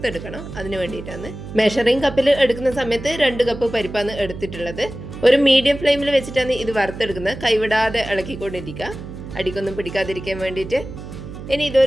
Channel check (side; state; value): right; noise; hum, 11 dB below the sound